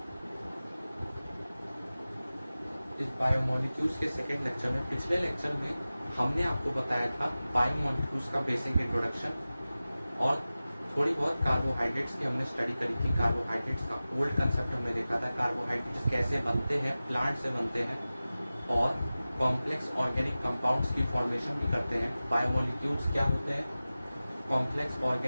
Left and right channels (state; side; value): inverted; both; correlation -0.96